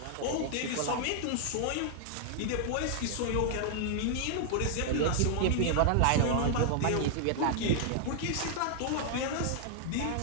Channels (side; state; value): both; different; correlation 0.00